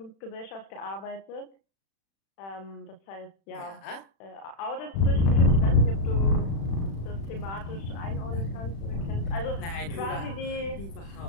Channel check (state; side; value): late; right; 36 ms